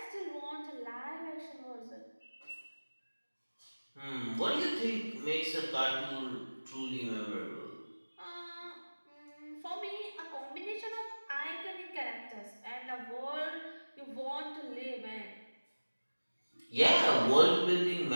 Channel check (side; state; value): both; inverted; correlation -1.00